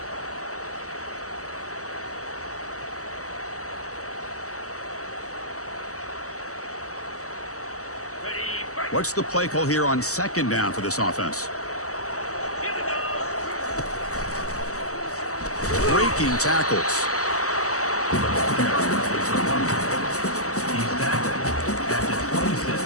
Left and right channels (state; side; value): late; right; 0.65 ms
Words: What's the play call here on 2nd down for this offense? Breaking tackles. He's tackled at the